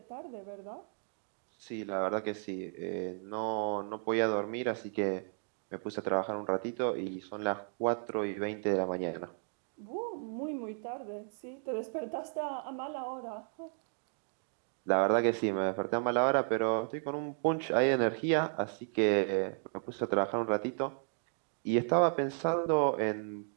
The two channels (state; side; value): silent; left; 55 dB below the other